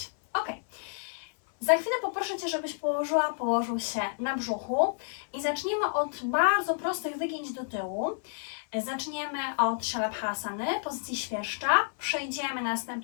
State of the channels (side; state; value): right; silent; 58 dB below the other